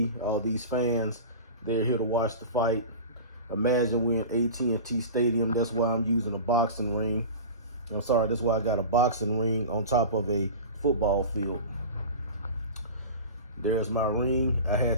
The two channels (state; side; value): inverted; both; correlation -0.33